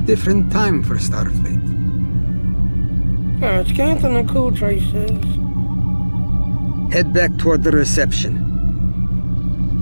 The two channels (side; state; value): both; inverted; correlation -1.00